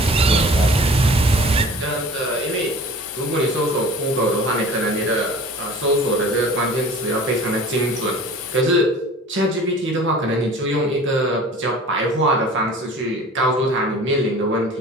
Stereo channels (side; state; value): both; normal; correlation 0.43